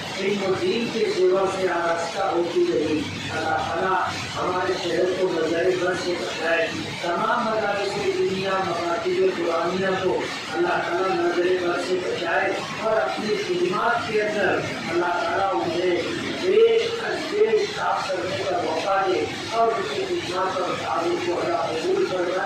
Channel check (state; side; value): identical; both; correlation 1.00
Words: علم و دین کے سیوا سے آراستہ ہوتی رہی۔ اللہ تعالیٰ ہمارے شہر کو نظر بد سے بچائے، تمام مدارس دنیا مکاتب قرآنیہ کو اللہ تعالیٰ نظر بد سے بچائے، اور اپنی خدمات کے اندر اللہ تعالیٰ انہیں دیش صاف کرنے کا موقع دے، اور اس کی خدمات اور تعلق کو اللہ قبول